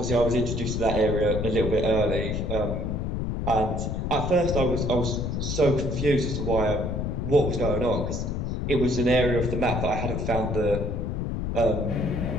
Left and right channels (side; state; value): left; noise; rumble, 2 dB below the sound